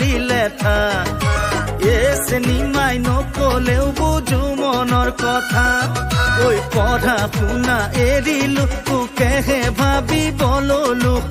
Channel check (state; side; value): identical; both; correlation 1.00